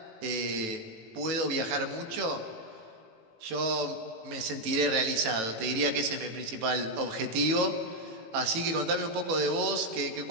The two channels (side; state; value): left; late; 18 ms